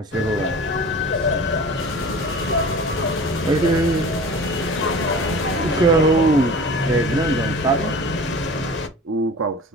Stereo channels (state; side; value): normal; both; correlation 0.39